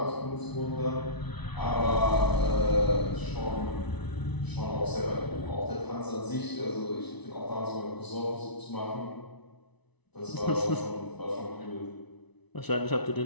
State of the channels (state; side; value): late; right; 1.0 ms